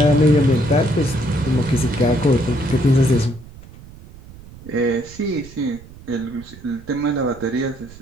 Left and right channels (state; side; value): noise; right; rumble, 19 dB below the sound